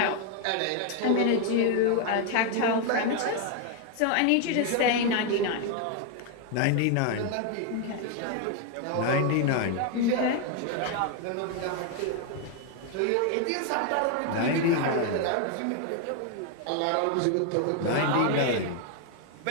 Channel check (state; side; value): different; both; correlation 0.01